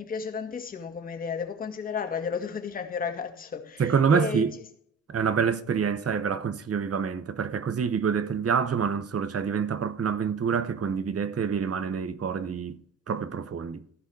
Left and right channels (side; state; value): left; quieter; 4.7 dB